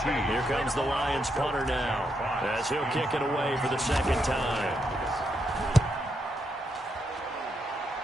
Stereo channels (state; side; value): normal; both; correlation 0.80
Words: Here comes the Lions punter now, as he'll kick it away for the 2nd time.